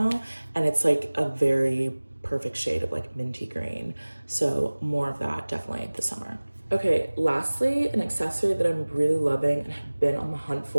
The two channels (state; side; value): inverted; both; correlation -1.00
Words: and it's like a very perfect shade of like minty green. So more of that definitely this summer. Okay, lastly, an accessory that I'm really loving and have been on the hunt